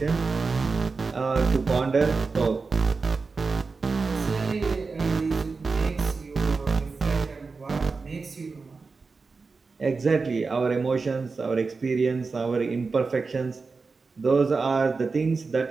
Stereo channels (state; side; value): quieter; left; 4.4 dB